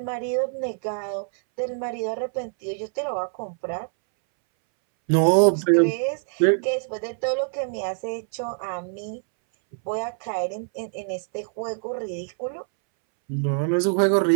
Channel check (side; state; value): left; silent; 62 dB below the other